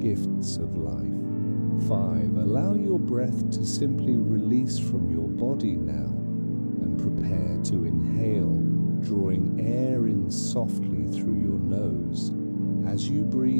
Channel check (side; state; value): both; inverted; correlation -1.00